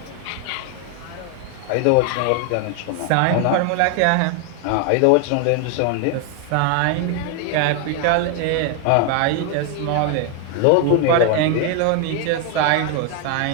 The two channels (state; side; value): different; both; correlation 0.01